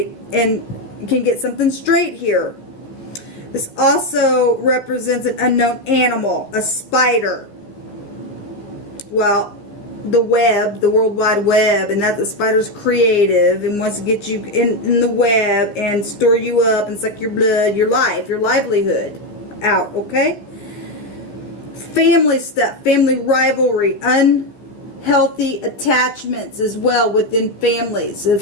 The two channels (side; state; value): right; late; 14 ms